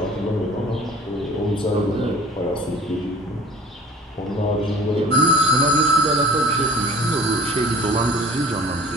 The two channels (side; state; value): both; normal; correlation 0.47